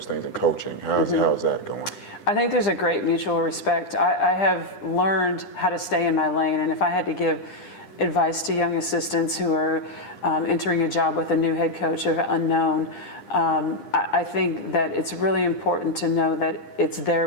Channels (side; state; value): right; late; 9.9 ms